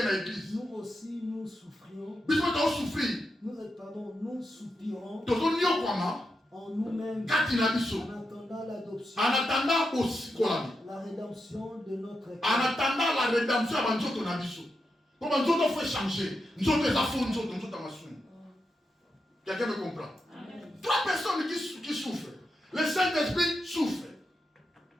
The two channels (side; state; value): both; normal; correlation 0.87